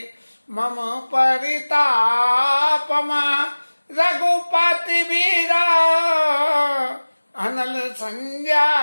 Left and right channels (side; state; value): both; inverted; correlation -1.00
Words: मम परितापम, रघुपति वीरा अनल